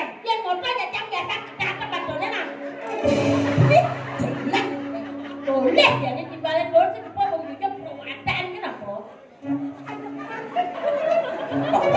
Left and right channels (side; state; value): both; identical; correlation 1.00